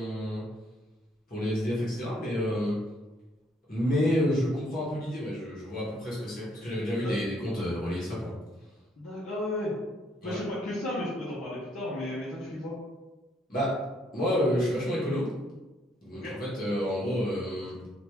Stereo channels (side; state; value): both; normal; correlation 0.69